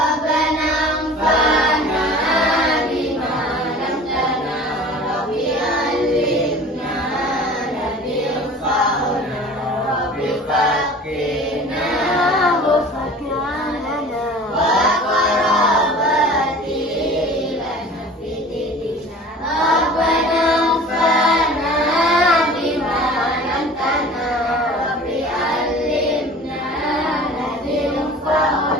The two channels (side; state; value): both; normal; correlation 0.43